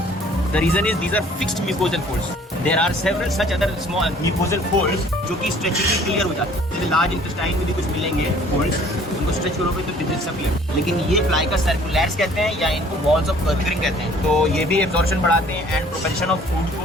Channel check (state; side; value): normal; both; correlation 0.55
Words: The reason is these are fixed mucosal folds. There are several such other small mucosal folds जो कि स्ट्रेचिंगली क्लियर हो जाते हैं। जैसे लार्ज इंटेस्टाइन में भी कुछ मिलेंगे folds, उनको स्ट्रेच करोगे तो डिसअपियर। लेकिन ये प्लाइका सर्कुलैर्स कहते हैं या इनको वॉल्स ऑफ कर्विंग कहते हैं। तो ये भी एब्जॉर्प्शन बढ़ाते हैं एंड प्रोपेल्शन ऑफ फूड